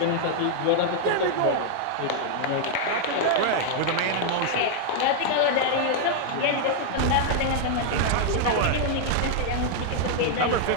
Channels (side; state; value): both; different; correlation 0.00